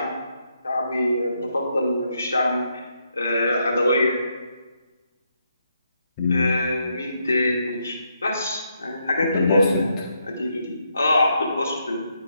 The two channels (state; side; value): inverted; both; correlation -0.78